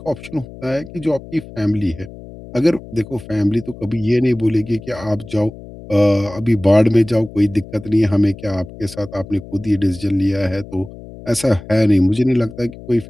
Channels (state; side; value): noise; left; hum, 16 dB below the sound